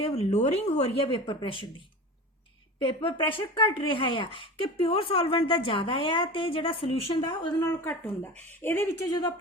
ਲੋਅਰਿੰਗ ਹੋ ਰਹੀ ਹੈ ਵੇਪਰ ਪ੍ਰੈਸ਼ਰ ਦੀ ਵੇਪਰ ਪ੍ਰੈਸ਼ਰ ਘਟ ਰਿਹਾ ਆ ਕਿ ਪਿਓਰ ਸੋਲਵੈਂਟ ਦਾ ਜ਼ਿਆਦਾ ਆ ਤੇ ਜਿਹੜਾ ਸੋਲੂਸ਼ਨ ਦਾ ਉਹਦੇ ਨਾਲੋਂ ਘੱਟ ਹੁੰਦਾ। ਇਹਦੇ ਵਿੱਚ ਜਦੋਂ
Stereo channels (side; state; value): both; normal; correlation 0.32